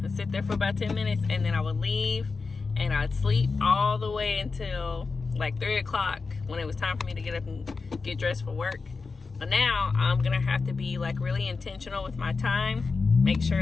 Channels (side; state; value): right; quieter; 4.4 dB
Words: and sit there for about 10 minutes, and then I would leave, and I'd sleep all the way until like 3 o'clock when it was time for me to get up and get dressed for work. But now I'm gonna have to be like really intentional with my time, make